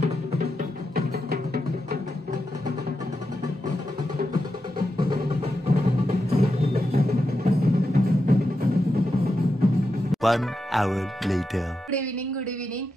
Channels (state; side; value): normal; both; correlation 0.87